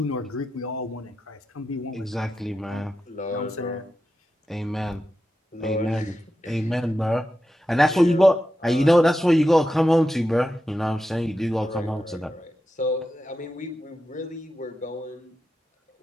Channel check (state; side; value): normal; both; correlation 0.90